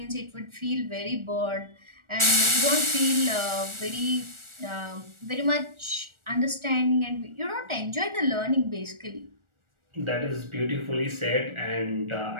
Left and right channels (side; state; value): left; late; 1.4 ms